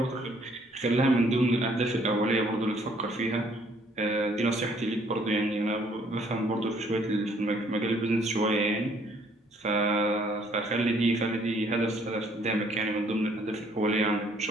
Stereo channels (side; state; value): both; normal; correlation 0.63